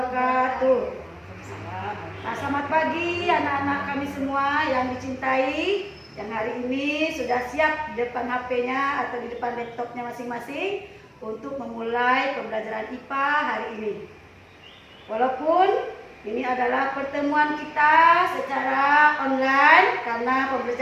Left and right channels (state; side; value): identical; both; correlation 1.00